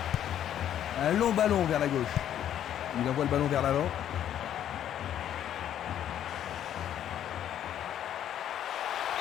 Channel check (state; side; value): quieter; right; 10.6 dB